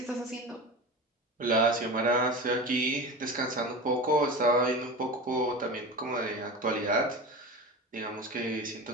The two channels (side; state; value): both; normal; correlation 0.28